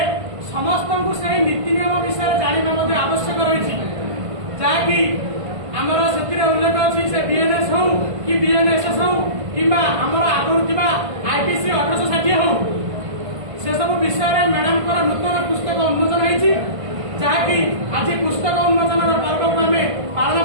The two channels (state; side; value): late; left; 1.5 ms